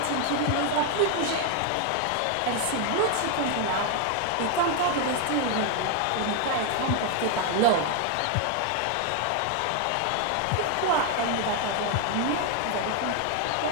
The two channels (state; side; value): different; both; correlation 0.01